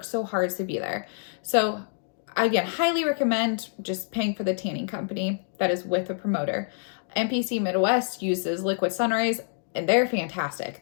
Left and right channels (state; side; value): silent; right; digital silence